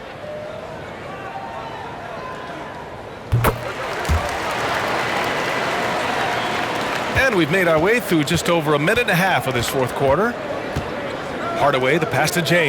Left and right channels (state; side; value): identical; both; correlation 1.00